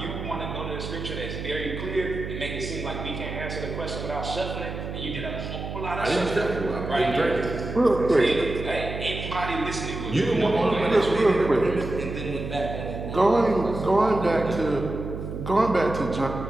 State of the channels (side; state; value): right; noise; hum, 7 dB below the sound